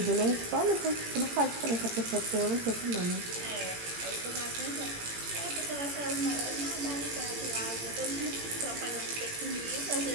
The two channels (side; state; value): left; late; 18 ms